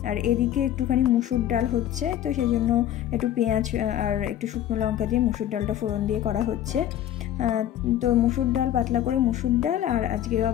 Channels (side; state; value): right; quieter; 11.7 dB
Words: আর এদিকে একটুখানি মুসুর ডাল হচ্ছে, তো সেই জন্য একটু পেঁয়াজ আর একটু শুকনো লঙ্কা দিয়ে মুসুর ডালটা ফোড়ন দিয়ে করা হচ্ছে। তো মুসুর ডাল, পাতলা করে মুসুর ডাল, আর আজকে